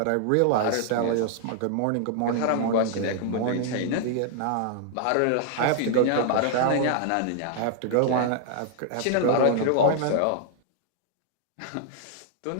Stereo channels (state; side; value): different; both; correlation -0.01